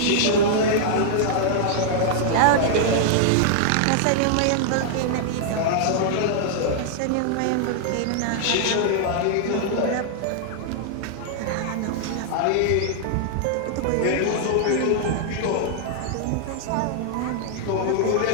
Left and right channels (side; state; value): both; different; correlation -0.01